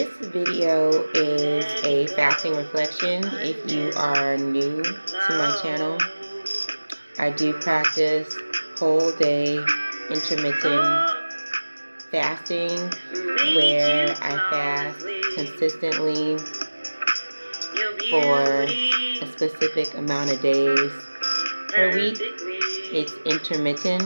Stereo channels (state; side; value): inverted; both; correlation -1.00